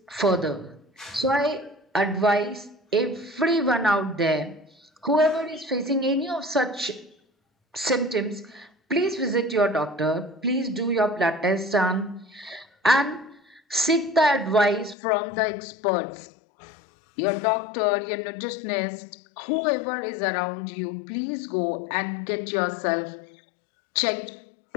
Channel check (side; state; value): right; drops out; at 15.0 s